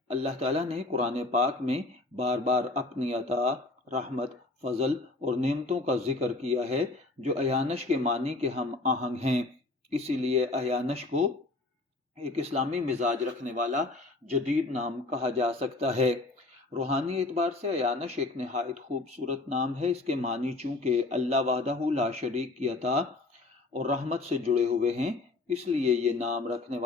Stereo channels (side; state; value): right; quieter; 3.1 dB